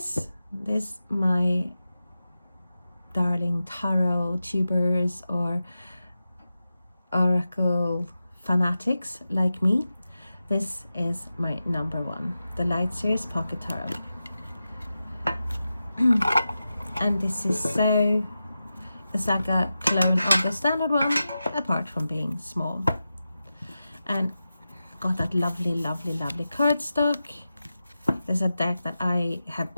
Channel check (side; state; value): both; inverted; correlation -0.92